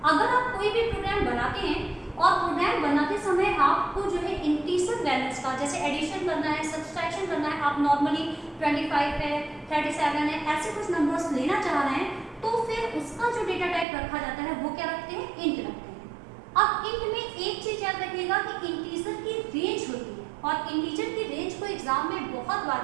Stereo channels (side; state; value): left; drops out; at 13.9 s